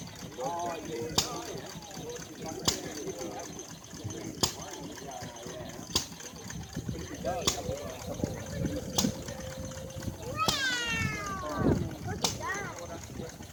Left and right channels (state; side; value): identical; both; correlation 1.00